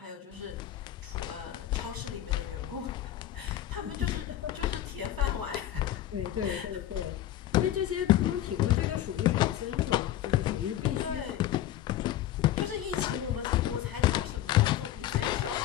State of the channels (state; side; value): quieter; right; 12.6 dB